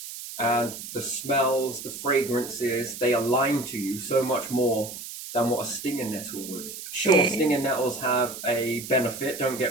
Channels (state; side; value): noise; right; hiss, 10 dB below the sound